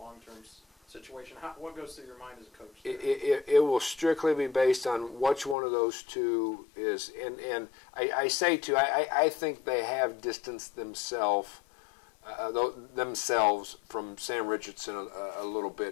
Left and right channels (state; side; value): drops out; right; at 5.6 s